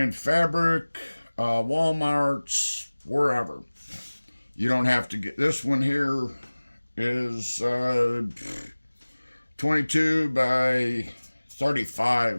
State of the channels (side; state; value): both; inverted; correlation -1.00